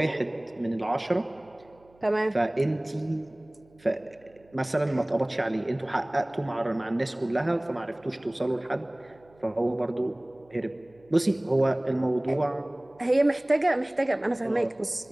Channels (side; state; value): right; noise; hum, 30 dB below the sound